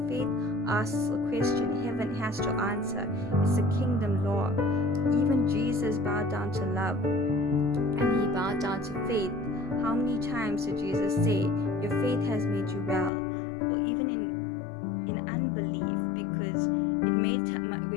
faith asks a question, heaven has to answer. It's a kingdom law. Even Jesus bowed down to love, and he bowed down to faith. How many times did Jesus say, your faith has made you well? Or even in unbelief, because it made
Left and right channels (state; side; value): drops out; right; at 13.1 s